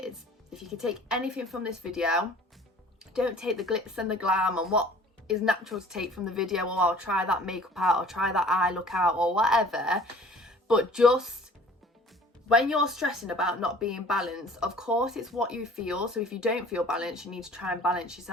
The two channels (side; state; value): both; normal; correlation 0.50